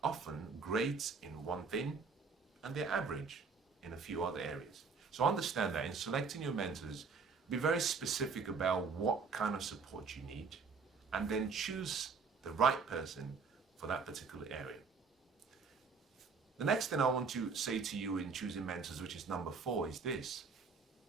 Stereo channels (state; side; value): quieter; left; 5.0 dB